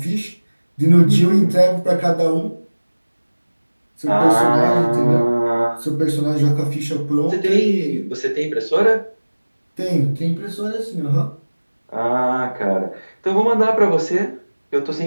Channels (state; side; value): inverted; both; correlation -1.00